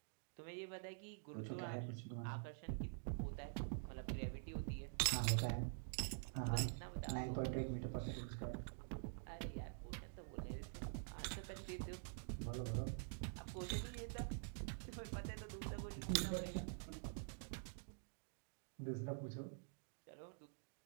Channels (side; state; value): left; silent; digital silence